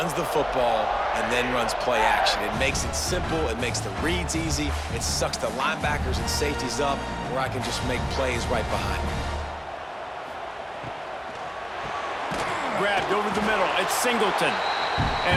the football and then runs play action. It makes it simple. It makes the reads easy. It sucks the linebackers and safeties up where I can just make plays right behind me. Grabbed over the middle. It's Singleton.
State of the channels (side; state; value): both; identical; correlation 1.00